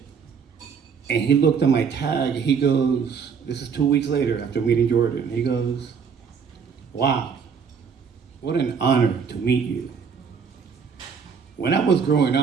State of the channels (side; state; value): left; quieter; 6.3 dB